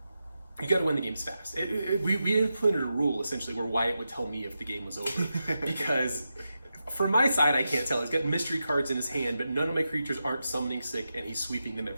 you got to win the games fast. We implemented a rule essentially where Wyatt would tell me if the game was over, because from my side I can't tell. He's got mystery cards in his hand, but none of my creatures aren't summoning sick, and he's sweeping them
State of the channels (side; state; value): both; inverted; correlation -0.89